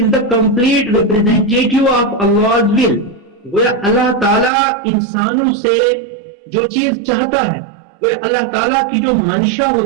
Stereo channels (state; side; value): drops out; left; at 4.5 s